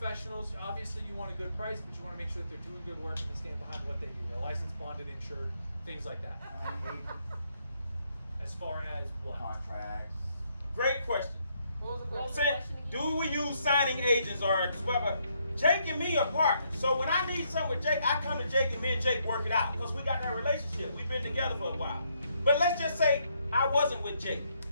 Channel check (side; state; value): both; inverted; correlation -0.73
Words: Obviously, you want a good price, but you want to make sure that they're doing good work and they stand behind what they do. They're licensed, bonded, insured, things like that. As far as what? Contracts. Great question. What was the Say, question again? do we use signing agents or whatever? Jake and me are partners. So when I need something with Jake, I come to Jake and me and Jake work it out because we got that relationship. We've been together for a while. But let's just say I wasn't with Jake.